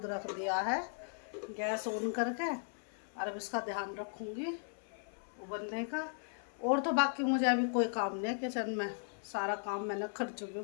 रख दिया है गैस ऑन करके। और अब इसका ध्यान रखूँगी उबलने का। और तो बाकी मुझे अभी कोई काम नहीं है किचन में, सारा काम मैंने कर चुकी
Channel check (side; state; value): right; silent; 53 dB below the other